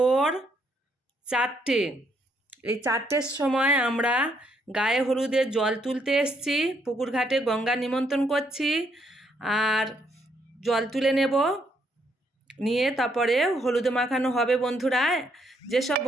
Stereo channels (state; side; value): normal; both; correlation 0.73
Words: 4টে। এই 4টের সময় আমরা গায়ে হলুদের জল তুলতে এসছি। পুকুর ঘাটে গঙ্গা নিমন্ত্রণ করছি, আর জল তুলে নেব, নিয়ে তারপরে হলুদে মাখানো হবে। বন্ধুরা, যেসব